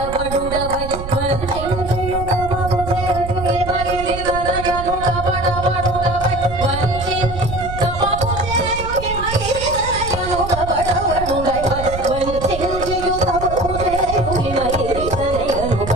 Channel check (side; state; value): right; noise; rumble, 8 dB below the sound